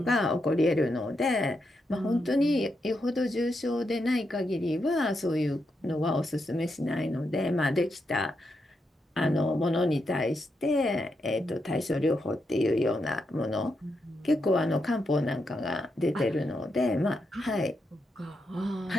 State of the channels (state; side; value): normal; both; correlation 0.83